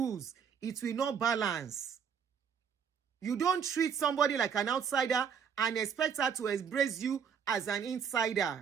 it will not balance. You don't treat somebody like an outsider and expect her to embrace you as an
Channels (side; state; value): left; quieter; 7.2 dB